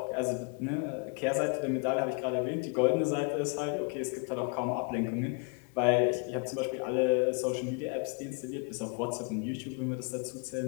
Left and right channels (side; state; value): right; quieter; 35.8 dB